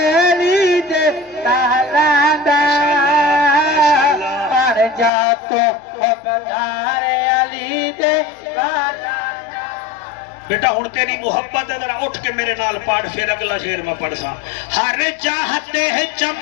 علی دے لالا دا پڑ جا تو بدار علی دے لالا بیٹا ہن تیری محبت ہے ذرا اٹھ کے میرے نال پڑھ پھر اگلا شعر میں پڑھ سا ہر چاہتے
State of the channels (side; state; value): right; drops out; at 5.1 s